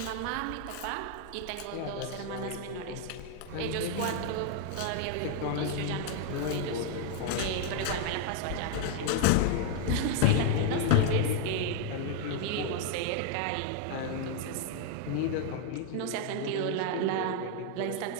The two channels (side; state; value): both; different; correlation 0.00